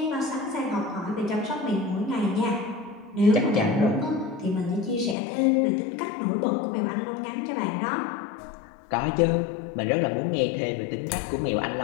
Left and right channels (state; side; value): drops out; right; at 5.2 s